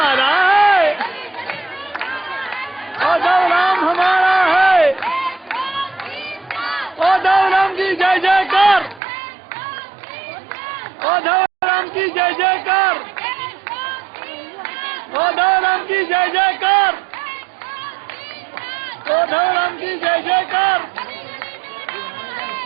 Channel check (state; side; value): drops out; left; at 9.0 s